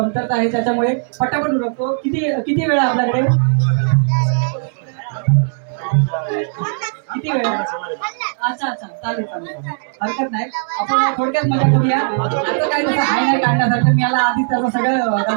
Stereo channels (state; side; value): silent; left; 68 dB below the other